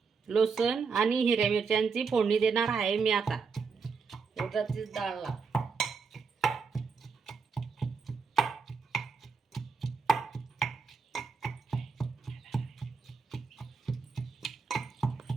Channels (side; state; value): left; quieter; 5.2 dB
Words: लसूण आणि हिरव्या मिरच्यांची फोडणी देणार आहे मी आता उडदाची डाळला.